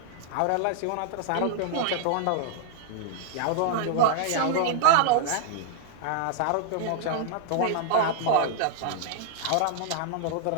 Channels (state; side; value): different; both; correlation -0.01